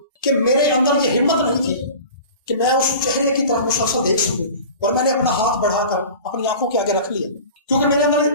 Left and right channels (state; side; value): inverted; both; correlation -0.38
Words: کہ میرے اندر یہ ہمت نہیں تھی کہ میں اس چہرے کی طرف مسلسل دیکھ سکوں، اور میں نے اپنا ہاتھ بڑھا کر اپنی آنکھوں کے آگے رکھ لیا، کیونکہ میرے اندر